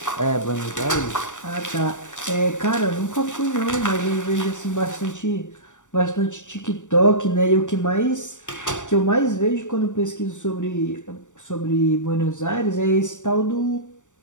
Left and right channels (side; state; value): right; late; 0.85 ms